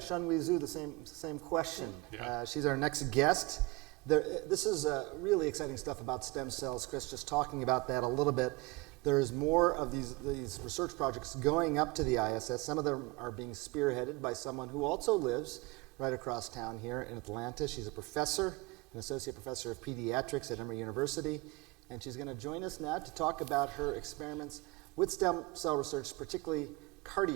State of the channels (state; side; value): quieter; left; 23.7 dB